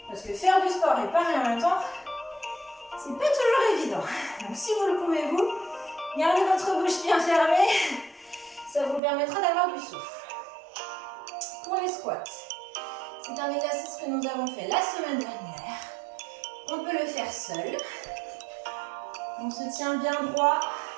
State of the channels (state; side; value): drops out; left; at 9.0 s